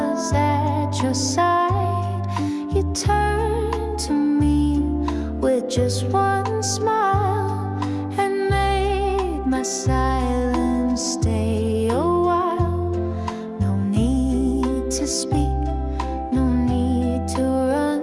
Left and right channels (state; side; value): identical; both; correlation 1.00